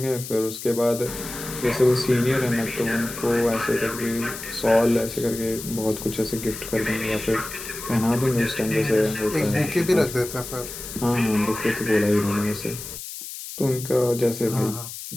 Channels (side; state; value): left; noise; hiss, 10 dB below the sound